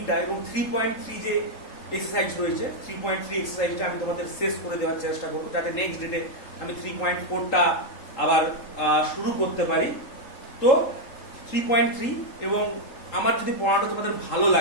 এবং 3.3 যে এক্সারসাইজ রয়েছে, 3.3 এক্সারসাইজটা আমি তোমাদের শেষ করে দেওয়ার চেষ্টা করবো, যাতে নেক্সট ডেটে আমি 3.4টা আবার শুরু করতে পারি। তো 3.3, এবং আমার যদি পড়াটা তোমাদের ভালো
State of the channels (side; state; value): right; late; 3.7 ms